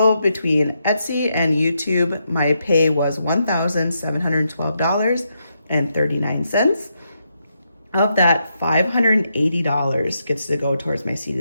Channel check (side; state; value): both; inverted; correlation -0.81